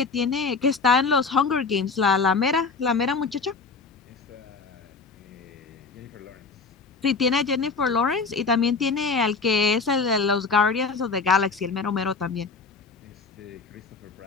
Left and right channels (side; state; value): right; quieter; 4.5 dB